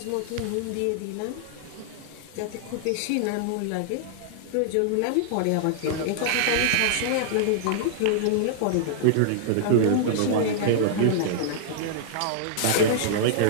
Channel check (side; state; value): both; different; correlation -0.01